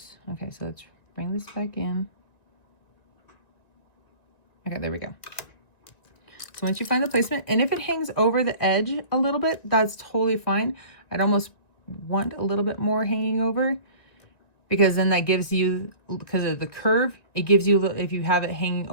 Okay, so let's bring this back in. Okay, there we go. So once you find the placement, and if it hangs over the edge a little bit, that's totally fine. I'd almost want a little bit more hanging over, because then that gives you, because of the curve, it gives you, if you have it hanging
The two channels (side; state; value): right; late; 2.0 ms